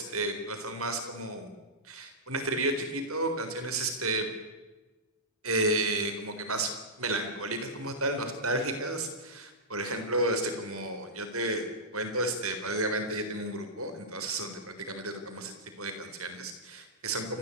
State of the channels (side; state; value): both; normal; correlation -0.13